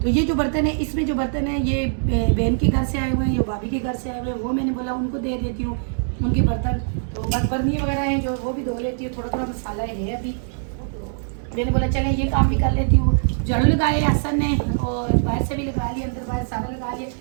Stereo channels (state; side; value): silent; left; digital silence